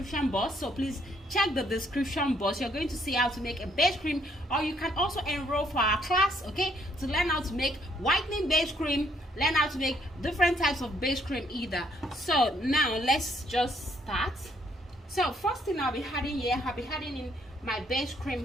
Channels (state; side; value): normal; both; correlation 0.68